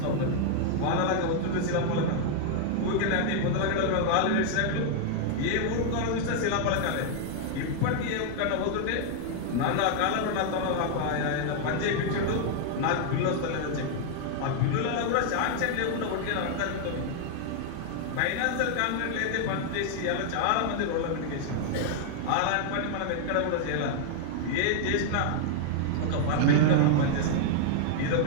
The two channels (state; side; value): different; both; correlation 0.00